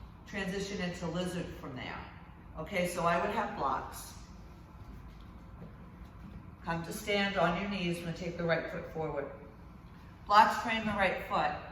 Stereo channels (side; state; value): both; identical; correlation 1.00